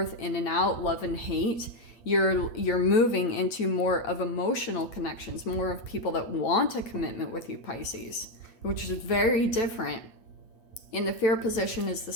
in and out, love and hate. You're moving into more of emotional connections, more of people that want a commitment with you, Pisces, which is very different. In the fear position is the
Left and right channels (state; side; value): late; right; 8.5 ms